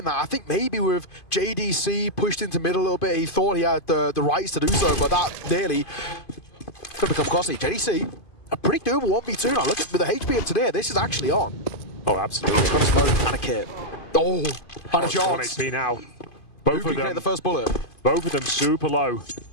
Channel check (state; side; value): late; right; 2.5 ms